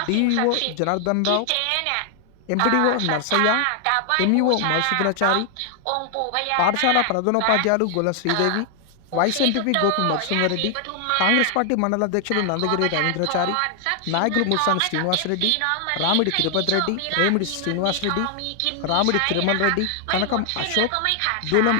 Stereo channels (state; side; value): different; both; correlation 0.00